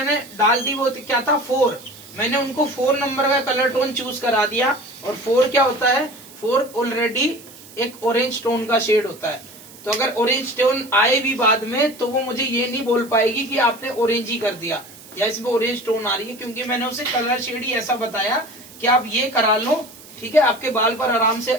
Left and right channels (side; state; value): right; noise; hiss, 20 dB below the sound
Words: डाल दी, वो क्या था 4। मैंने उनको 4 नंबर का कलर टोन चूज करा दिया। और 4 क्या होता है? 4 ऑलरेडी एक ऑरेंज टोन का शेड होता है। तो अगर ऑरेंज टोन आए भी बाद में तो वो मुझे ये नहीं बोल पाएगी कि आपने ऑरेंज ही कर दिया या इसमें ऑरेंज टोन आ रही है, क्योंकि मैंने उसे कलर शेड ही ऐसा बताया कि आप ये करा लो, ठीक है। आपके बाल पर आराम से